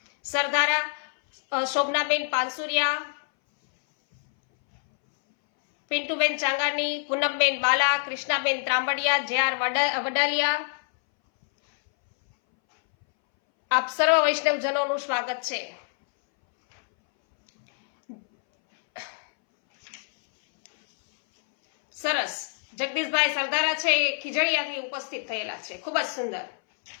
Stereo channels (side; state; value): right; silent; 61 dB below the other